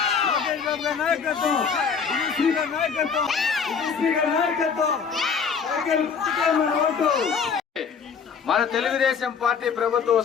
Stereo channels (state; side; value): quieter; right; 6.2 dB